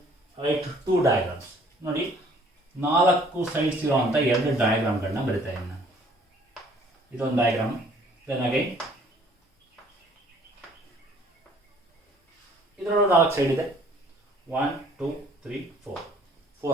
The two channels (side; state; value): both; normal; correlation 0.57